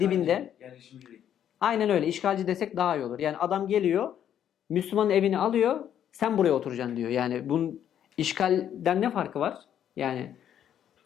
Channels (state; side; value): quieter; right; 9.9 dB